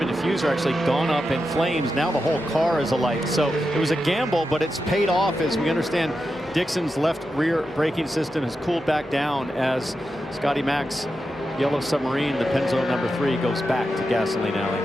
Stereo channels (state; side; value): normal; both; correlation 0.89